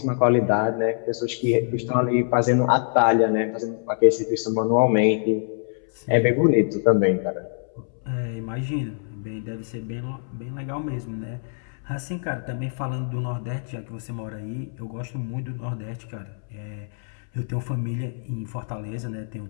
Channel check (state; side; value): silent; right; 62 dB below the other